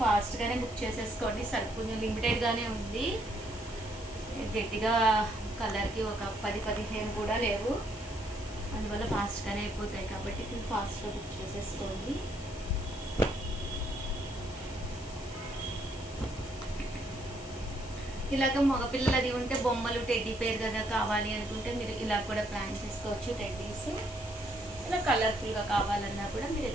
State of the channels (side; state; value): left; noise; hiss, 17 dB below the sound